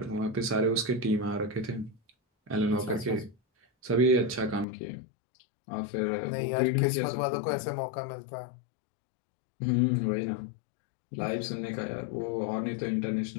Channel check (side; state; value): right; drops out; at 4.7 s